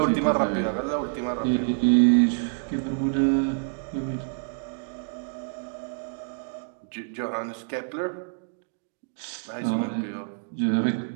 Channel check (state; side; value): silent; left; digital silence